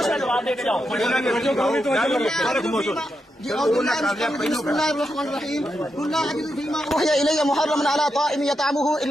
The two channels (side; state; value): both; normal; correlation 0.85